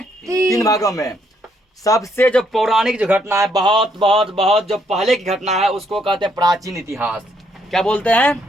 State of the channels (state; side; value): normal; both; correlation 0.72